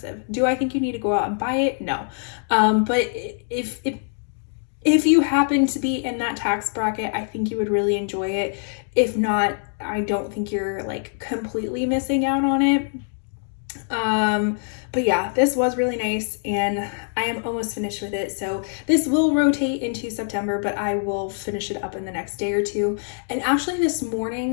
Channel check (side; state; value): right; silent; 63 dB below the other